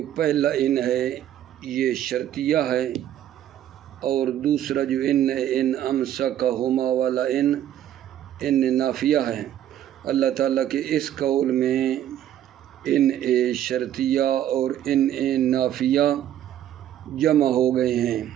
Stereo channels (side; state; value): left; quieter; 11.4 dB